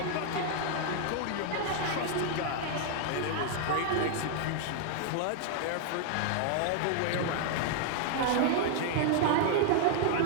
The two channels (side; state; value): both; different; correlation 0.00